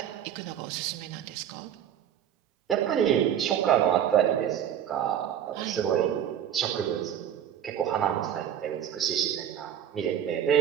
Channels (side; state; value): left; quieter; 9.8 dB